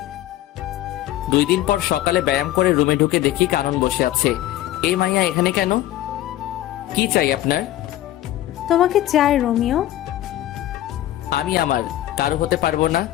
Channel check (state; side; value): quieter; right; 14.0 dB